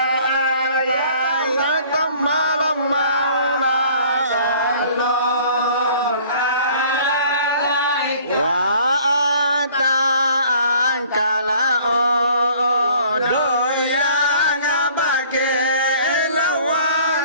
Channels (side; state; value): both; inverted; correlation -0.53